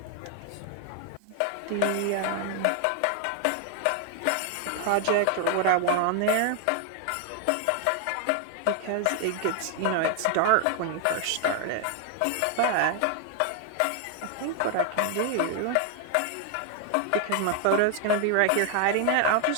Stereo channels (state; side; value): different; both; correlation 0.00